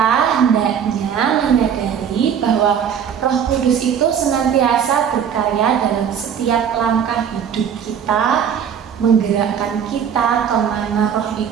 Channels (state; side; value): quieter; left; 8.0 dB